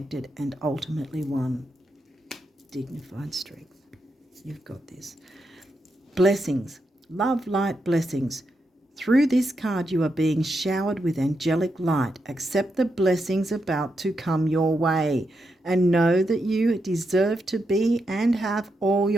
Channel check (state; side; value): normal; both; correlation 0.84